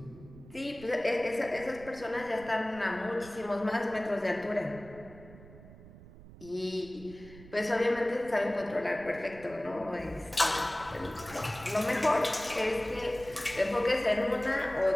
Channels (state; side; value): noise; right; rumble, 18 dB below the sound